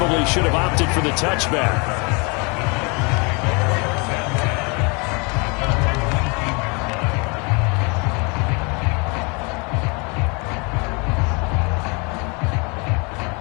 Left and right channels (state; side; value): quieter; right; 31.2 dB